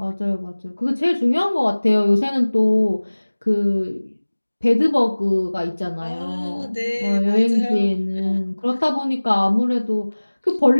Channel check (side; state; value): both; inverted; correlation -1.00